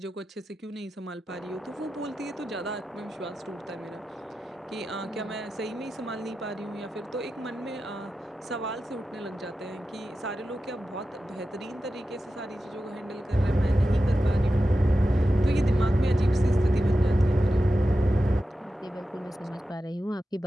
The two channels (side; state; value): both; normal; correlation 0.92